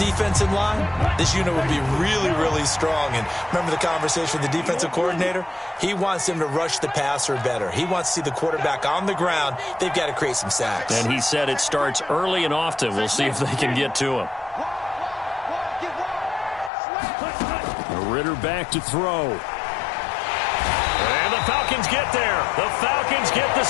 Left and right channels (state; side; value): drops out; right; at 16.7 s